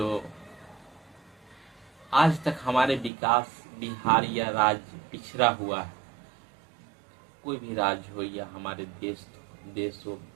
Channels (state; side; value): drops out; left; at 3.1 s